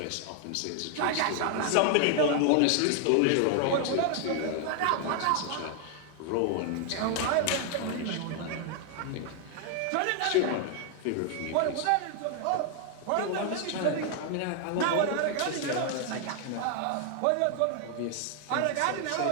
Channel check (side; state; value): both; different; correlation 0.00